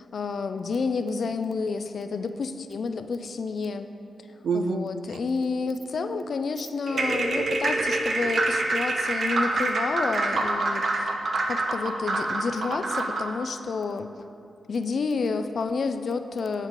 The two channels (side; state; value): both; normal; correlation 0.84